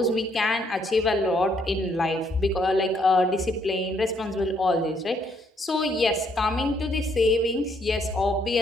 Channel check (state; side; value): normal; both; correlation 0.70